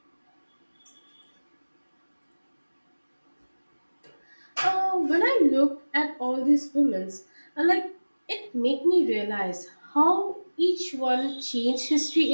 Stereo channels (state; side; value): inverted; both; correlation -1.00